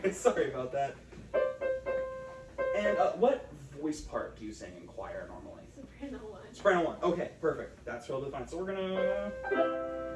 sorry about that. And what voice part do you sing in choir normally? Soprano one. Soprano 1. Okay, perfect. That's totally fine. So we're gonna.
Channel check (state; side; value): identical; both; correlation 1.00